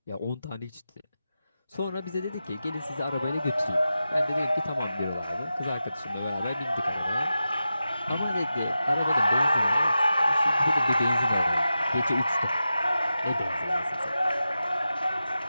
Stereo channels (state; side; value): inverted; both; correlation -0.92